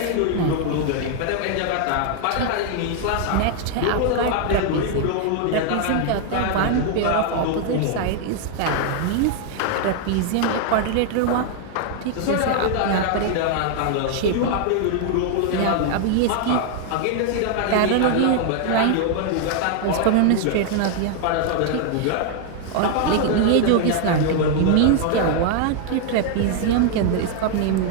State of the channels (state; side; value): different; both; correlation 0.00